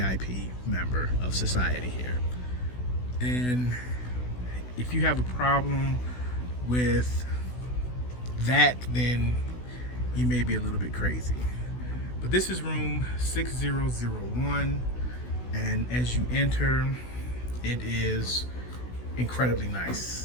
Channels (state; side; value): late; right; 16 ms